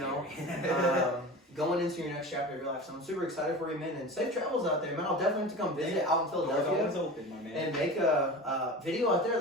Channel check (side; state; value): both; normal; correlation 0.33